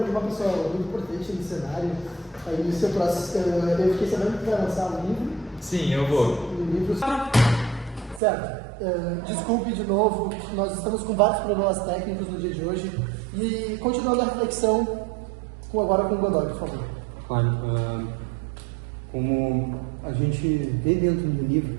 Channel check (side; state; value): left; drops out; at 8.2 s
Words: uma pessoa muito importante no cenário. Aí no seu próximo, eu fiquei sabendo que vai lançar um livro. Sim, eu vou. Um livro. Certo. Desculpe de novo, nós estamos com vários problemas técnicos no dia de hoje. E continuando a reflexão, agora com o Godoy, por favor. Claro, como a gente vê dentro do